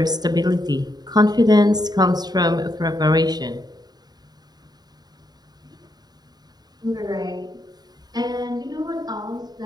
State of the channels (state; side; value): late; left; 0.20 ms